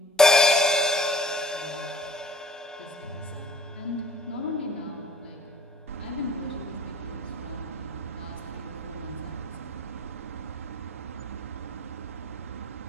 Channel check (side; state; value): both; normal; correlation 0.52